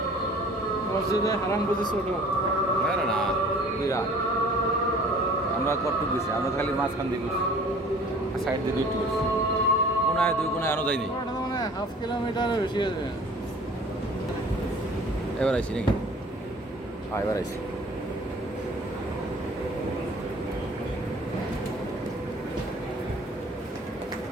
মসজিদে হারাম বুঝি ছোট। না না না, বিরাট। আমরা কটুক গেছি, আমরা খালি মাঝখান দিয়ে গেছি, সাইড দিয়ে দুইটি গেছি, কোনায় 2 কোনায় আনো যায়নি। মানে হাফ কিলোমিটারের বেশি আছে। এবার আইসি নাকি? হ্যাঁ এবার আইসি।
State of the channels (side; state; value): both; normal; correlation 0.49